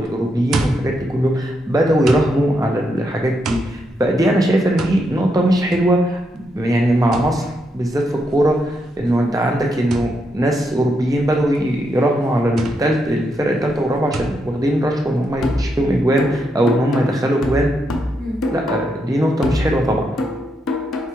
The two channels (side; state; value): both; normal; correlation 0.81